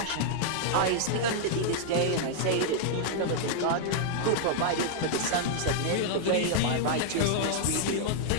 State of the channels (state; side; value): different; both; correlation -0.01